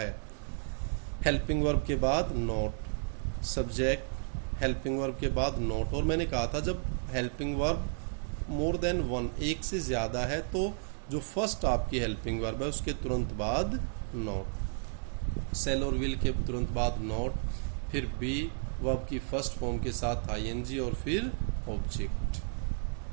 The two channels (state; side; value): silent; left; digital silence